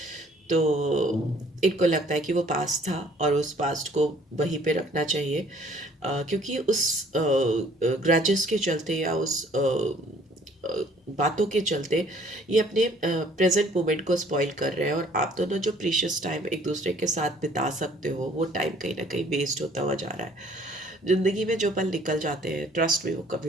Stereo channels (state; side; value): normal; both; correlation 0.58